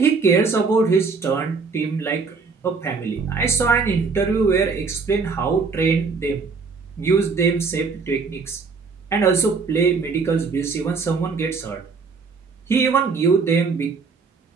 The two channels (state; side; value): quieter; left; 4.8 dB